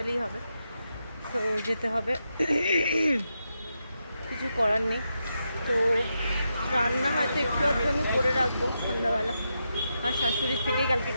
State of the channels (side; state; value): both; inverted; correlation -0.86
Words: হবে। তো যেতে হবে, কিছু করার নেই। তো রান্না হয়তো একটু আধটু আমি করে রাখবো সন্ধ্যাবেলা, আর শাশুড়ির থেকেই কালকে